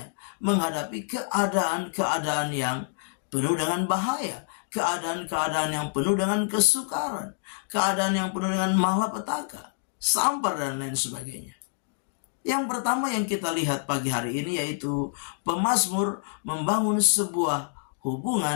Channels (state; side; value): silent; right; digital silence